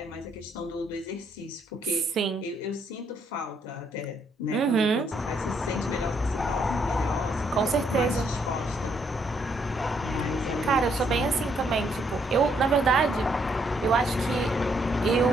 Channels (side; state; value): both; normal; correlation 0.72